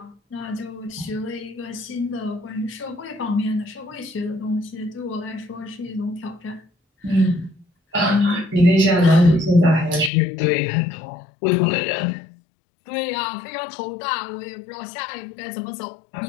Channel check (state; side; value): drops out; right; at 10.1 s